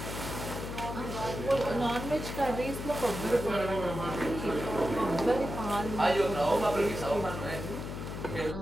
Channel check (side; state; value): left; noise; hum, 6 dB below the sound